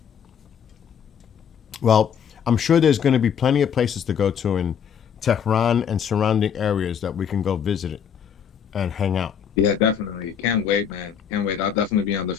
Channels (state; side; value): quieter; right; 7.9 dB